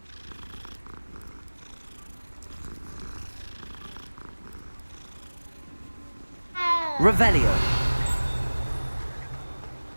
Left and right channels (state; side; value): inverted; both; correlation -1.00